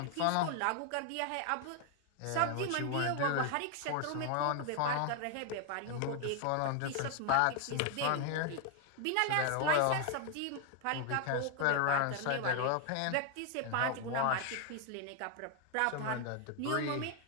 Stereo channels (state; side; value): different; both; correlation 0.00